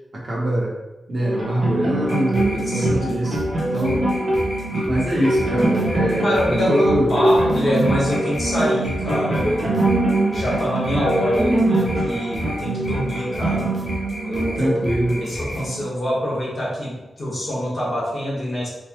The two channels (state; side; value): normal; both; correlation 0.87